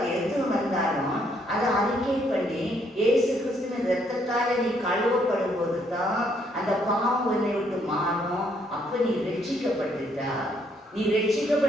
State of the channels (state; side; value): normal; both; correlation 0.70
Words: எது வந்தாலும் அதை அறிக்கை பண்ணி இயேசு கிறிஸ்துவின் இரத்தத்தால நீ கழுவப்படும் போது தான் அந்த பாவம் உன்னை விட்டு மாறும். அப்ப நீ ரட்சிக்கப்பட்டுட்டா. நீ